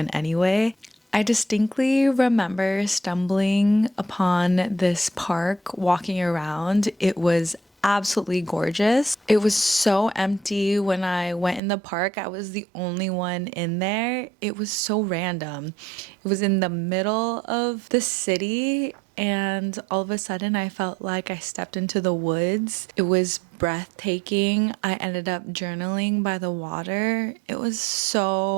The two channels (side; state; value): left; drops out; at 11.6 s